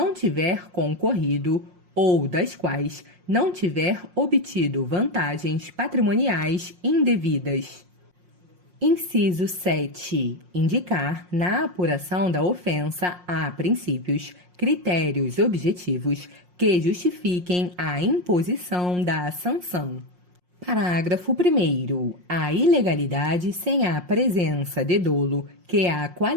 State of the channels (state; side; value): late; left; 5.6 ms